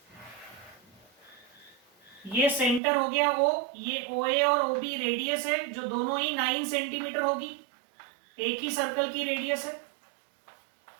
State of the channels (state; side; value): drops out; left; at 2.8 s